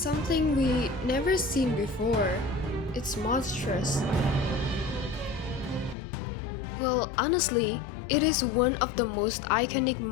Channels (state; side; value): drops out; right; at 6.0 s